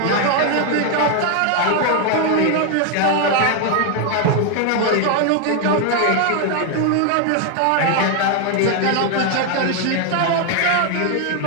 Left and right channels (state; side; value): different; both; correlation 0.01